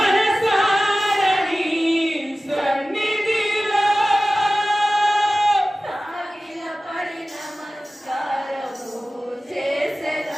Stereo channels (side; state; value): both; normal; correlation 0.96